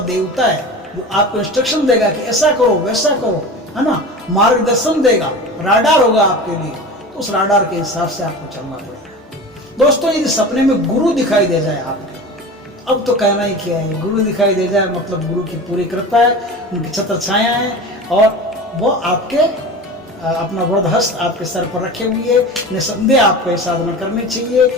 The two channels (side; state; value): both; normal; correlation 0.33